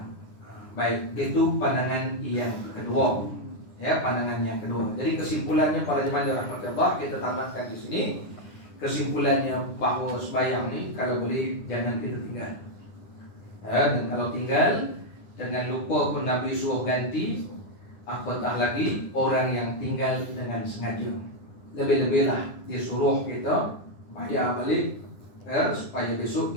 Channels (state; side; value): late; right; 10 ms